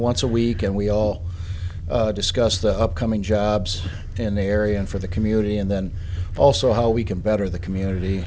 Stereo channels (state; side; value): identical; both; correlation 1.00